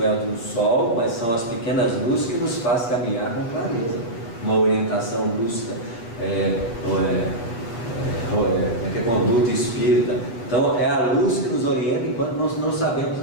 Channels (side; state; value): right; late; 8.3 ms